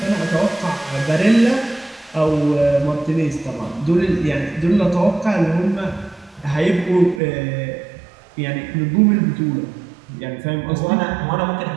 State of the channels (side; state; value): left; drops out; at 7.2 s